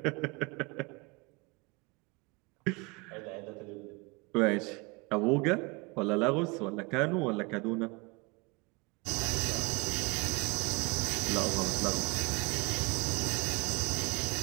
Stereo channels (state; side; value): quieter; left; 27.6 dB